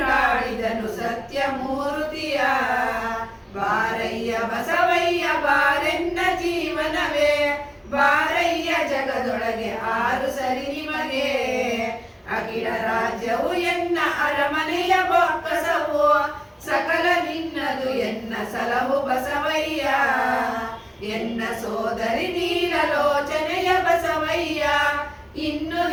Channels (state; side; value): identical; both; correlation 1.00